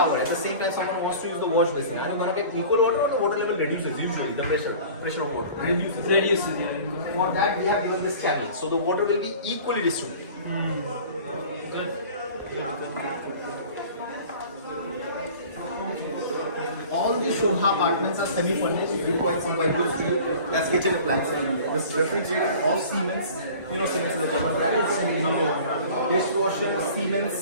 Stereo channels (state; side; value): inverted; both; correlation -0.43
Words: at the same time someone wants to use the wash basin, and you're going to get equal water, or the water level reduces usually, the pressure of water reduces. Yeah. For that we have given this channel, so the water will be equally distributed. All the Sobha apartments are semi-furnished. We provide some white goods for you. That's kitchen appliances. This refrigerator, all Siemens. You know Siemens is a German brand. Dishwasher,